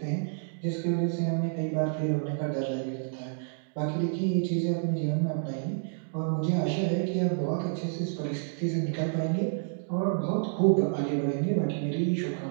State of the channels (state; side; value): silent; left; digital silence